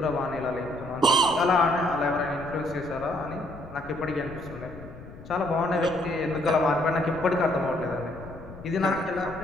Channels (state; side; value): noise; left; rumble, 16 dB below the sound